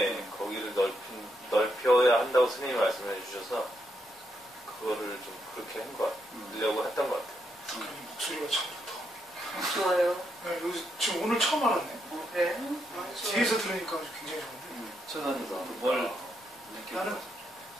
거기를 넓혀야 한다고 스님이 말씀해 주셔서 그거를 좀 그렇게 하려고 했던 것 같아요. 목소리가 참 좋다. 좋아요. 네, 여기 지금 오늘 처음 알았네. 그래? 뒤에서 들으니까 굉장히 좋은데. 저는 뭘 나는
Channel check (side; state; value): both; normal; correlation 0.80